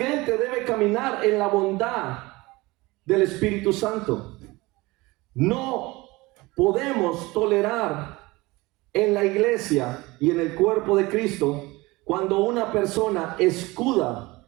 debe caminar en la bondad del Espíritu Santo. No podemos tolerar en la iglesia y en el cuerpo de Cristo cuando una persona escuda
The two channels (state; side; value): quieter; left; 21.8 dB